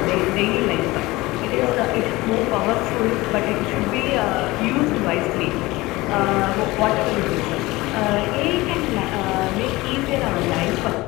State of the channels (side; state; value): right; quieter; 20.4 dB